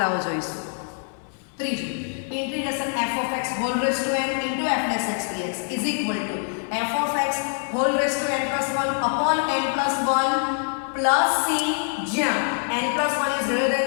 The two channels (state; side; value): silent; right; 57 dB below the other